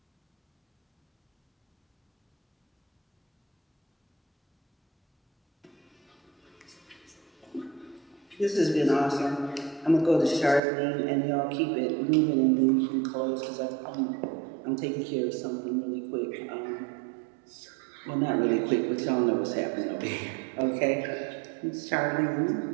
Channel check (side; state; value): left; drops out; at 10.6 s